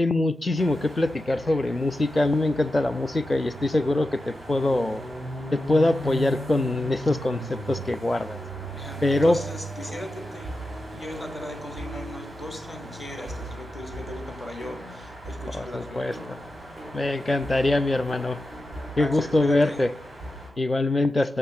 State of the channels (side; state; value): both; normal; correlation 0.91